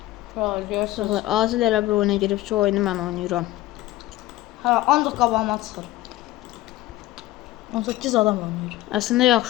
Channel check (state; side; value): quieter; right; 16.6 dB